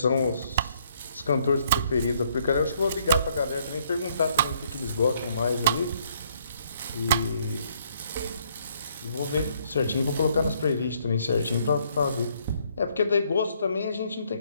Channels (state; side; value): inverted; both; correlation -0.68